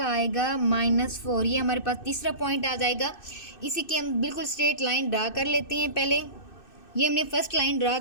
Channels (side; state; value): right; late; 2.6 ms